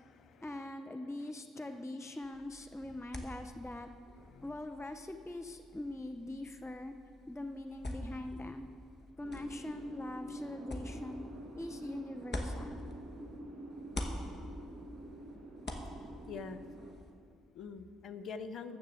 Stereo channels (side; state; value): both; normal; correlation 0.86